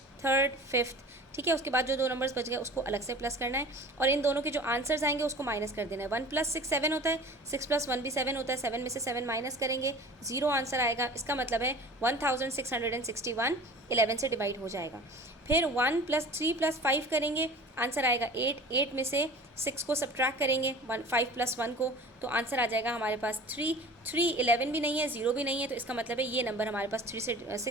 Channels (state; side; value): normal; both; correlation 0.41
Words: थर्ड, फिफ्थ. ठीक है, उसके बाद जो दो नंबर्स बच गए उसको अलग से प्लस करना है और इन दोनों के जो आंसर्स आएंगे उसको माइनस कर देना है. 1 + 6 7 होता है, 6 + 1 भी 7 होता है. 7 में से 7 माइनस करेंगे, 0 आंसर आएगा. इसका मतलब है 1661 11 से डिवाइड हो जाएगा. फिर 1 + 3 + 5 करेंगे, आंसर आएगा 8. 8 में से 6 को सब्ट्रैक्ट करेंगे 5 + 1 को, तो आंसर आ जाएगा हमारे पास 3. 3 11 भी नहीं है, 0 भी नहीं है, तो इसका मतलब है ये नंबर हमारे पास